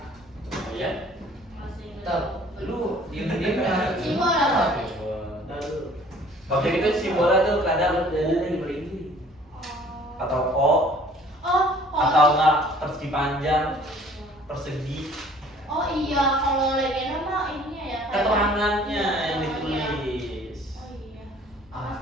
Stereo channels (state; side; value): normal; both; correlation 0.53